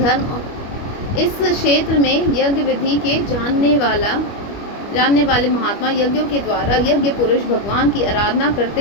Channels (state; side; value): late; right; 25 ms